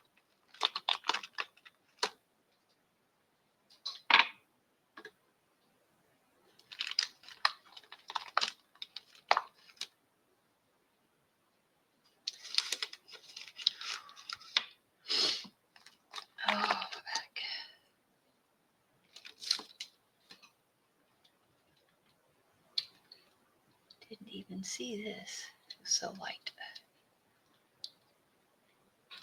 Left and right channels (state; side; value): identical; both; correlation 1.00